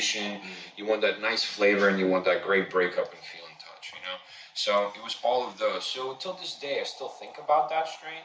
you want that nice flavor, and you want that great breakup and feel and touch, you know? So it was all of those. So until this day, I still think about that strain.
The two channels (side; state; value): both; identical; correlation 1.00